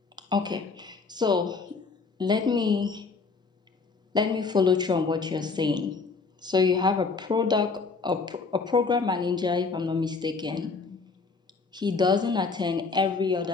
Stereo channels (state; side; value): quieter; right; 4.4 dB